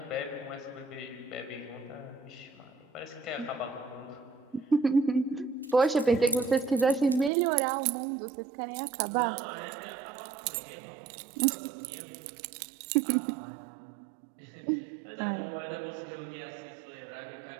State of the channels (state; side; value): drops out; left; at 7.3 s